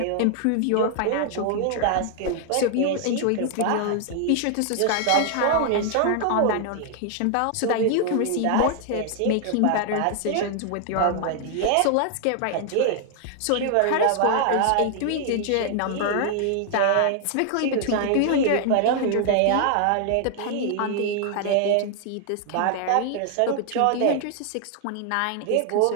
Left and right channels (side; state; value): both; different; correlation 0.00